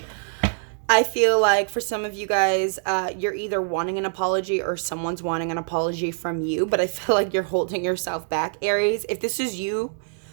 I feel like for some of you guys, you're either wanting an apology or someone's wanting an apology from you, but I feel like you're holding yourself back, Aries. If this is you,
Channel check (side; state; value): left; silent; digital silence